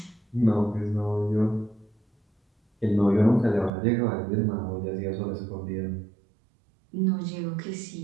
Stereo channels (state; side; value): drops out; left; at 3.7 s